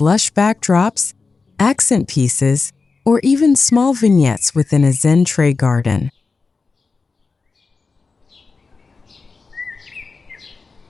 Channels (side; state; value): right; quieter; 4.3 dB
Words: lush backdrops, accent pieces, or even small vignettes within a Zen tray garden.